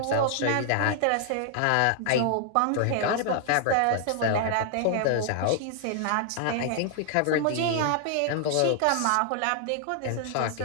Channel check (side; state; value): both; different; correlation 0.00